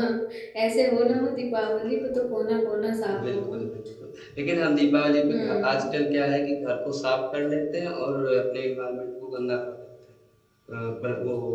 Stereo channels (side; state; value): both; identical; correlation 1.00